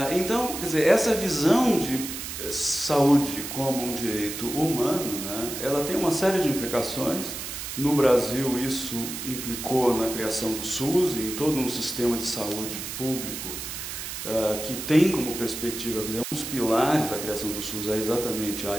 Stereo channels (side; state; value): right; noise; hiss, 7 dB below the sound